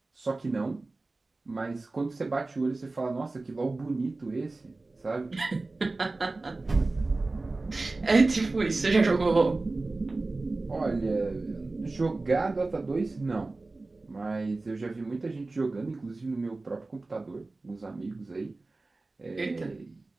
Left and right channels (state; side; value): quieter; left; 3.3 dB